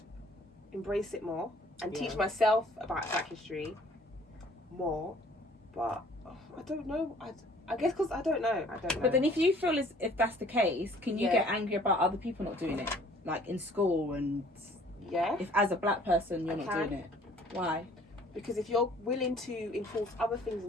embrace it more and teach myself about Black history more. But I don't know. I guess because I don't know. But then if you feel as if that's the case, can you get angry about other people not doing it? Like in school and... Yeah. If as a black person you're not doing it. Why? Because if you're willing to enforce other things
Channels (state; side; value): normal; both; correlation 0.55